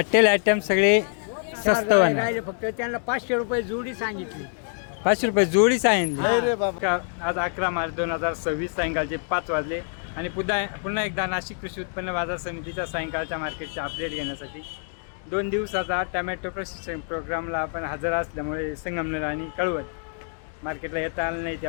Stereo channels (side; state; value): right; silent; 57 dB below the other